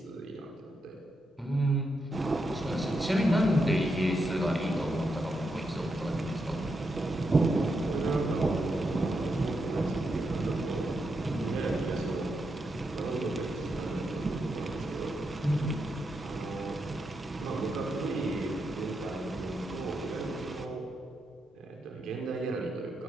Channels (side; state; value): both; normal; correlation 0.84